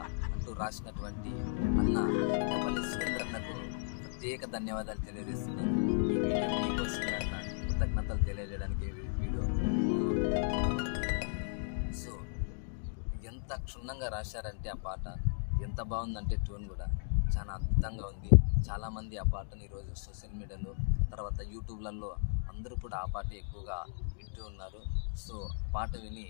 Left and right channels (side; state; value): right; silent; digital silence